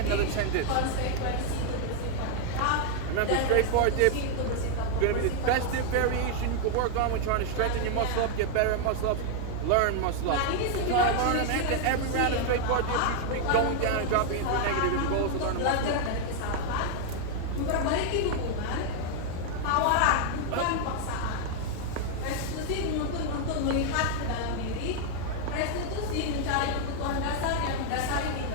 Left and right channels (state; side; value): different; both; correlation 0.00